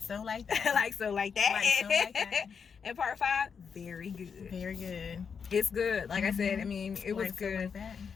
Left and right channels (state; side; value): quieter; right; 6.3 dB